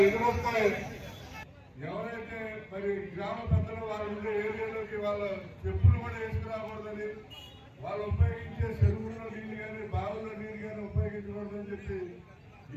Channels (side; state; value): both; identical; correlation 1.00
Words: ఎదురొస్తే ఎవరైతే మరి గ్రామ పెద్దలు వాళ్ళు ఉండే ఏరియాలోకి వాళ్ళ చెప్పులు కూడా వేసుకురాకూడదని, వాళ్ళు ఉపయోగించే చెరువుల్లో నీళ్ళు కానీ బావుల్లో నీళ్ళు కానీ ఉపయోగించకూడదని చెప్పి